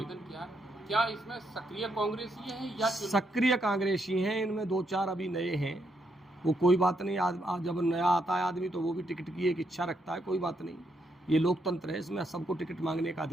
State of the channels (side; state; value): both; normal; correlation 0.78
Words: किया है, क्या इसमें सक्रिय कांग्रेसी हैं या सक्रिय कांग्रेसी हैं? इनमें 2-4 अभी नए हैं। वो कोई बात नहीं, आज जब नया आता है आदमी तो वो भी टिकट की एक इच्छा रखता है, कोई बात नहीं। ये लोकतंत्र है, इसमें सबको टिकट मांगने का